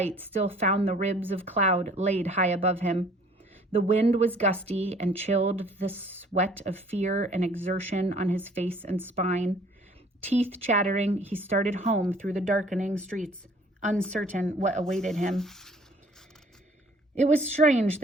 still found the ribs of cloud laid high above him. The wind was gusty and chilled the sweat of fear and exertion on his face and spine. Teeth chattering, he started home through the darkening streets, uncertain what awaited him. It was strange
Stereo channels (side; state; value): both; normal; correlation 0.55